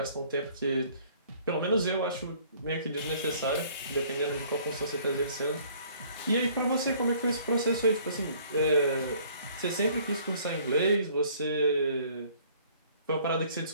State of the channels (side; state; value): both; inverted; correlation -0.57